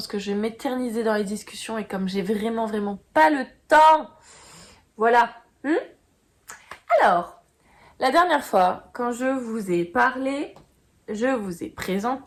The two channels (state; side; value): identical; both; correlation 1.00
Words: que je vais m'éterniser dans les discussions et comme j'ai vraiment pas le temps. Voilà. Alors, la dernière fois, quand je vous ai parlé, je vous ai